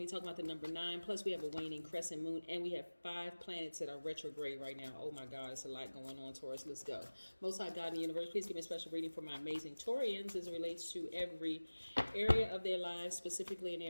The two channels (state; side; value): inverted; both; correlation -1.00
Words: to be talking about the number 9. Plus, we have a waning crescent moon, and we have 5 planets that are retrograde right now. Oh my God, it's a lot going on, Taurus. Let's go. Most High God in the universe, please give me a special reading for my amazing Taurians as it relates to every area of their lives, specifically in